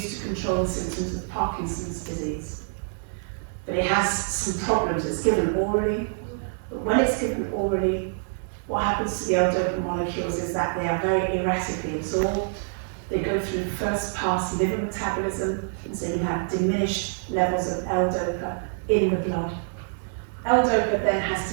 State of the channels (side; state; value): left; silent; digital silence